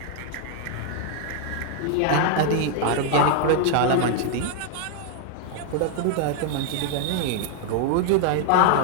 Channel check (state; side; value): different; both; correlation 0.00